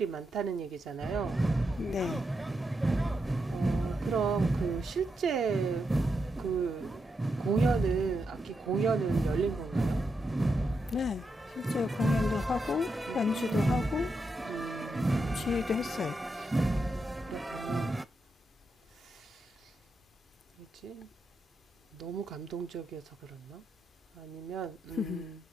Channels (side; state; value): both; normal; correlation 0.84